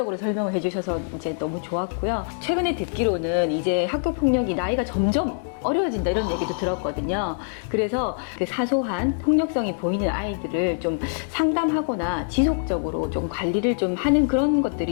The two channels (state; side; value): silent; right; digital silence